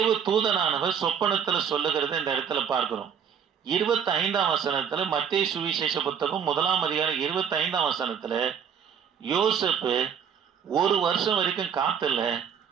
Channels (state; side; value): quieter; left; 7.7 dB